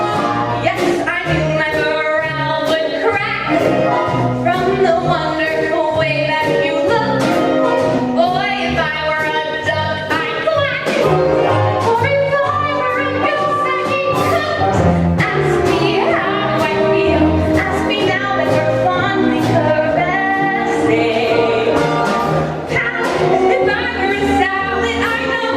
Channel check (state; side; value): identical; both; correlation 1.00